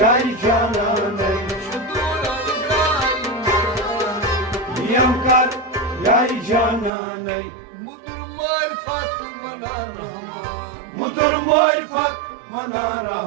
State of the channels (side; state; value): left; drops out; at 6.9 s